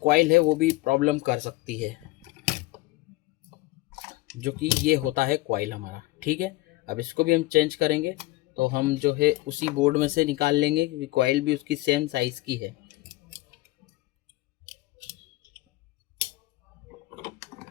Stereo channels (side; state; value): right; quieter; 19.6 dB